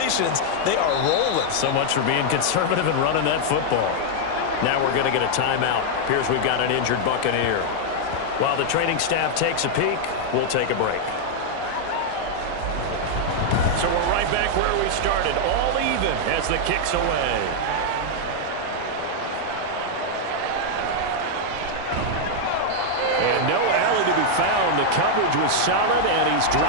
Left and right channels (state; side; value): different; both; correlation -0.01